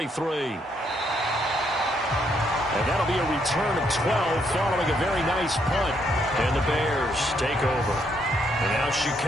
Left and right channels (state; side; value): normal; both; correlation 0.73